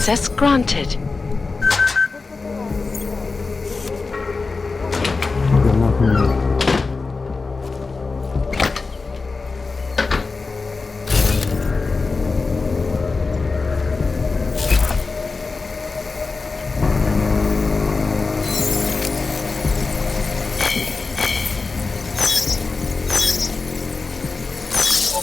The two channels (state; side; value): quieter; right; 4.1 dB